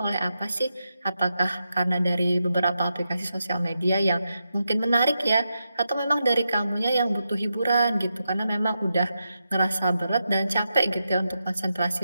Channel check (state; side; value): inverted; both; correlation -0.86